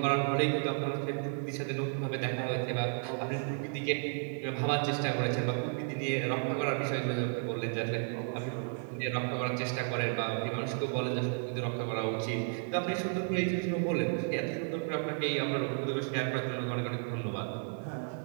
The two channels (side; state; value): left; silent; 56 dB below the other